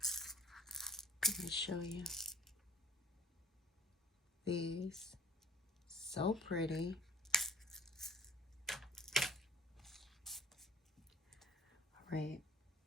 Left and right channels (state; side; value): normal; both; correlation 0.51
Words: Let me show you these. So pretty. All right,